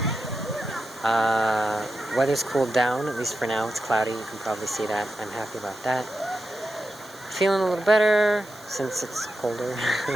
weather's cooled down, at least for now. It's cloudy, you can probably see that. I'm happy about that. Feeling a little better since it's colder.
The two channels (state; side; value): noise; right; hiss, 22 dB below the sound